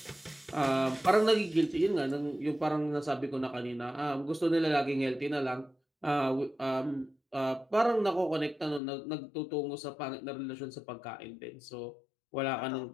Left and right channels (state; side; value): drops out; right; at 8.8 s